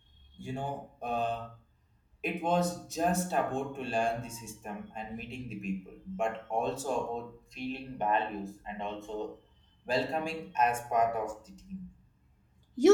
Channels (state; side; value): identical; both; correlation 1.00